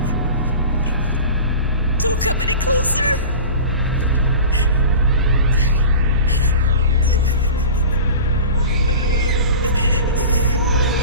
Don't come any closer.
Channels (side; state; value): both; inverted; correlation -0.35